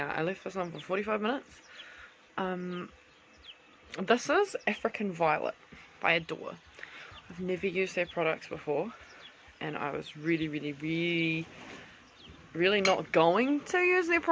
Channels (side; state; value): both; identical; correlation 1.00